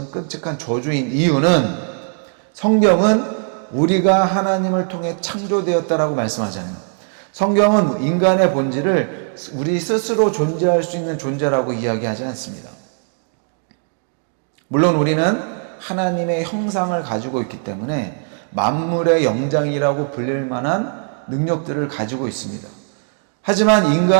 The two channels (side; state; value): left; silent; 66 dB below the other